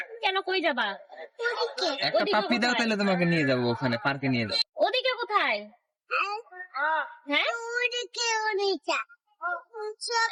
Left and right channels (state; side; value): identical; both; correlation 1.00